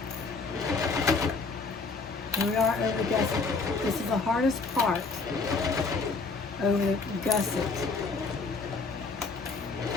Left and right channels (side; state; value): right; quieter; 4.2 dB